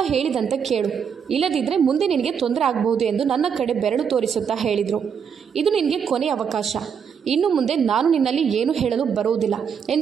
ಹೇಳಿದಂತೆ ಕೇಳು. ಇಲ್ಲದಿದ್ದರೆ ಮುಂದೆ ನಿನಗೆ ತೊಂದರೆ ಆಗಬಹುದು ಎಂದು ನನ್ನ ಕಡೆ ಬೆರಳು ತೋರಿಸುತ್ತಾ ಹೇಳಿದರು. ಇದು ನಿನಗೆ ಕೊನೆಯ ಅವಕಾಶ. ಇನ್ನು ಮುಂದೆ ನಾನು ನಿನ್ನಲ್ಲಿ ಏನು ಹೇಳಲು ಬರುವುದಿಲ್ಲ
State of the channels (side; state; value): left; quieter; 7.2 dB